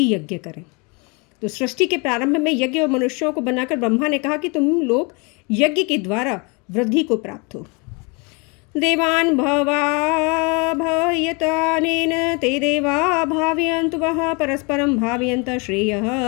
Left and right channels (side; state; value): right; quieter; 30.5 dB